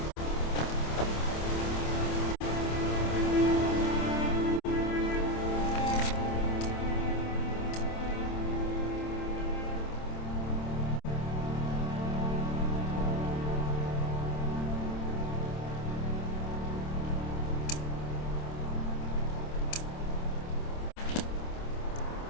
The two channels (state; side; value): late; right; 27 ms